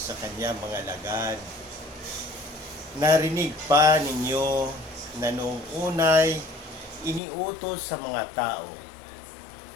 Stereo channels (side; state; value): right; drops out; at 7.2 s